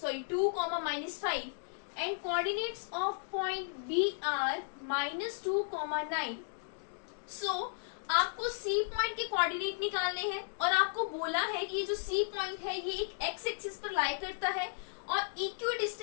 -5 and coordinates of point B are -2, 9। So आपको सी पॉइंट के कोऑर्डिनेट निकालने हैं और आपको बोला है कि ये जो सी पॉइंट है ये एक एक्स एक्सिस पर लाई करता है और इक्वी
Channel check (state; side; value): silent; right; digital silence